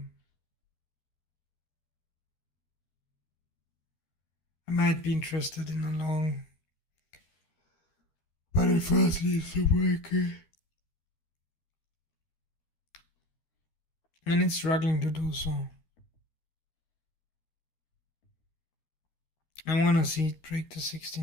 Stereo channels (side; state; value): right; late; 13 ms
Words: I might be interested in a long, but it first needs to break it. And it's struggling to do so. I want to see it break the